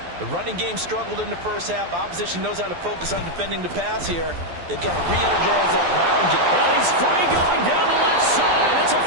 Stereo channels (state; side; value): late; left; 12 ms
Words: The running game struggled in the first half. Opposition knows how to focus on defending the pass here. They've got to re-energize that ground game. Well, he's free going down the left side. It's a